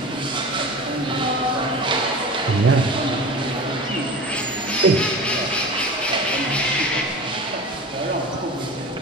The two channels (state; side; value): normal; both; correlation 0.33